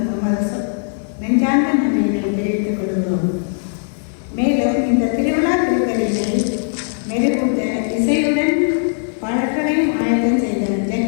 நமது நெஞ்சார்ந்த நன்றியினை தெரிவித்துக் கொள்கிறோம். மேலும் இந்த திருவிழா திருத்தலினை மெருகூட்ட இசையுடன் பாடல்களையும் ஆயத்தம் செய்த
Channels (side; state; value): right; silent; digital silence